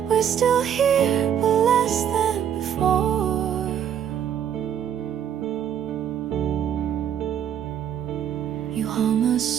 We're still here, but less than before. You hum a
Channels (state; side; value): quieter; left; 9.1 dB